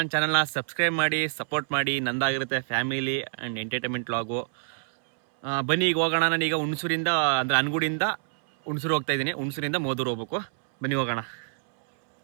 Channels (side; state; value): left; silent; 60 dB below the other